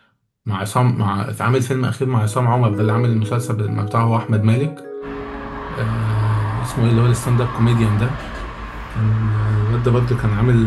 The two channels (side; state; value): both; identical; correlation 1.00